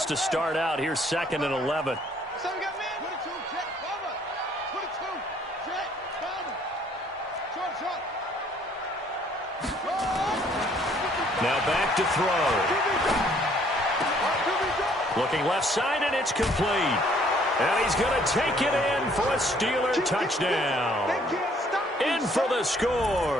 to start out, here's 2nd and 11. So we got man. 22, jet, cover. 22, jet, cover. Short. Now back to throw. Looking left side, and it's complete. And he's going to take it in for a Steeler touchdown. In for the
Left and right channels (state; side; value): normal; both; correlation 0.62